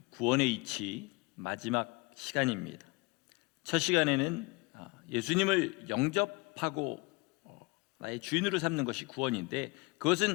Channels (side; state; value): right; quieter; 25.8 dB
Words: 구원의 이치 마지막 시간입니다. 첫 시간에는 예수님을 영접하고 나의 주인으로 삼는 것이 구원인데